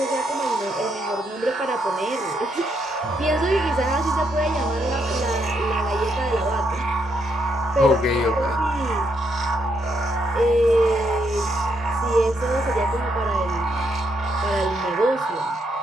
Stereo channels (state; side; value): normal; both; correlation 0.77